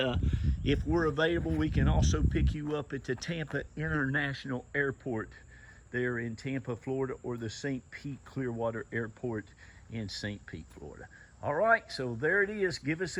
if we're available, we can also pick you up at the Tampa International Airport there in Tampa, Florida, or the St. Pete Clearwater Airport in St. Pete, Florida. All right, so there it is. Give us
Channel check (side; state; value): both; identical; correlation 1.00